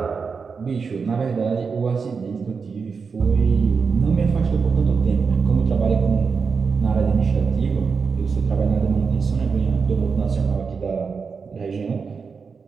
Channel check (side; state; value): left; quieter; 5.3 dB